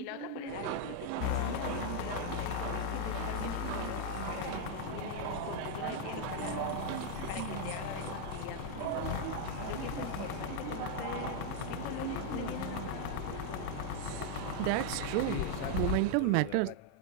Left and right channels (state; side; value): different; both; correlation 0.00